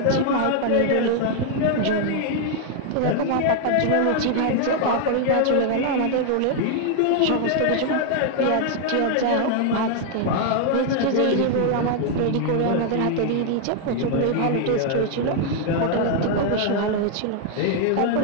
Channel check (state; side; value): different; both; correlation 0.00